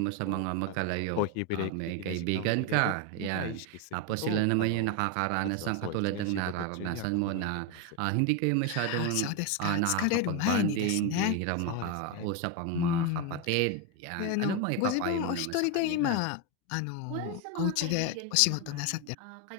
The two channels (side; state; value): both; different; correlation 0.02